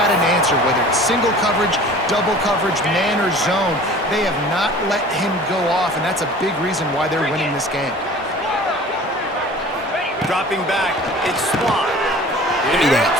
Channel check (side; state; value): both; normal; correlation 0.44